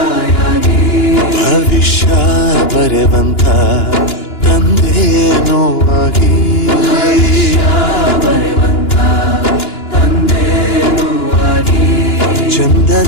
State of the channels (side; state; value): right; late; 2.9 ms